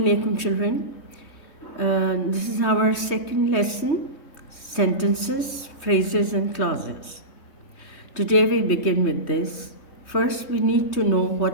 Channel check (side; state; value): right; late; 3.1 ms